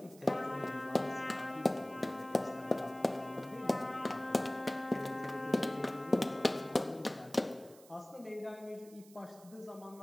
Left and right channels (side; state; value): right; noise; hiss, 23 dB below the sound